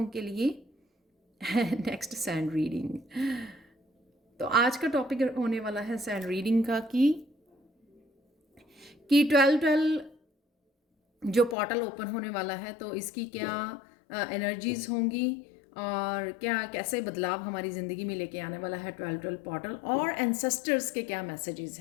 के लिए नेक्स्ट सैंड रीडिंग। तो आज का टॉपिक होने वाला है सैंड रीडिंग का कि 12-12 जो पोर्टल ओपन होने वाला है तो इसकी क्या एनर्जीज होंगी और क्या कैसे बदलाव हमारी ज़िंदगी में लेके आने वाला है 12-12 पोर्टल, और एंसेस्टर्स के क्या मैसेजेस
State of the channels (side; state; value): right; drops out; at 11.6 s